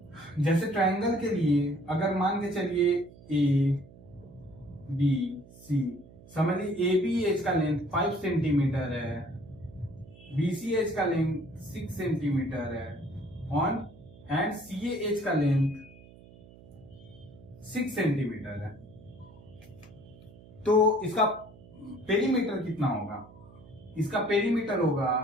जैसे ट्रायंगल के लिए अगर मान के चलिए ए बी सी, समझ लीजिए ए बी एज का लेंथ 5 सेंटीमीटर है, बी सी एज का लेंथ 6 सेंटीमीटर है, ऑन एंड सी एज का लेंथ 6 सेंटीमीटर है। तो इसका पेरीमीटर कितना होगा, इसका पेरीमीटर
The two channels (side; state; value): right; noise; hum, 21 dB below the sound